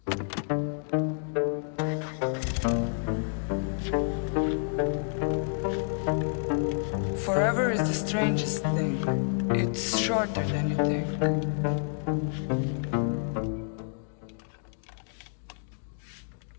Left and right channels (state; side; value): silent; right; digital silence